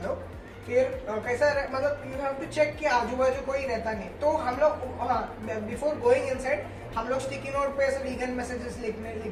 लोग, फिर कैसा मतलब यू हैव टू चेक कि आजू बाजू कोई रहता नहीं, तो हम लोग, हाँ, बिफोर गोइंग इनसाइड हम लोग स्टिकी नोट पे ऐसे वीगन मैसेजेस लिख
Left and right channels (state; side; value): identical; both; correlation 1.00